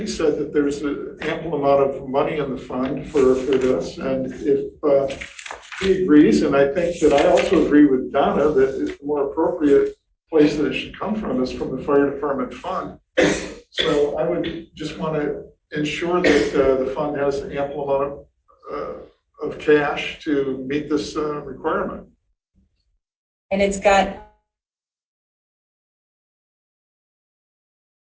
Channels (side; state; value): both; identical; correlation 1.00